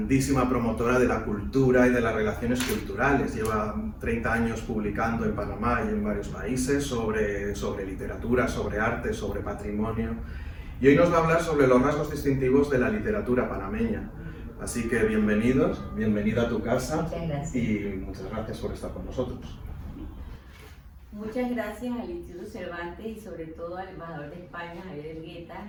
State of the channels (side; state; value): both; identical; correlation 1.00